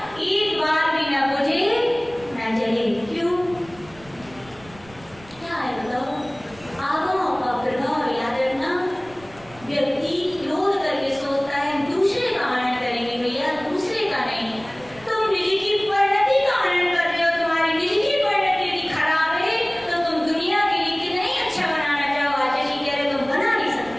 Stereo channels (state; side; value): noise; right; rumble, 23 dB below the sound